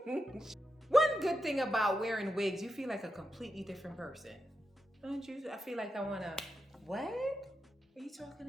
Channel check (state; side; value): normal; both; correlation 0.87